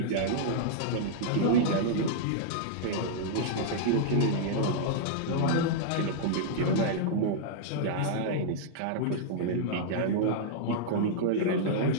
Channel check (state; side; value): different; both; correlation -0.02